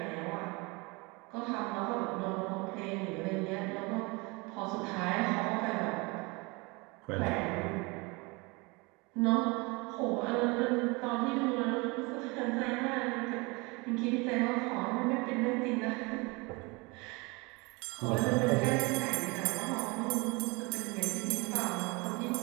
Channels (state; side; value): quieter; left; 26.9 dB